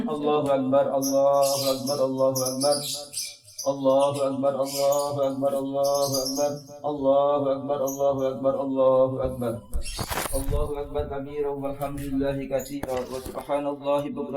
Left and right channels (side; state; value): both; identical; correlation 1.00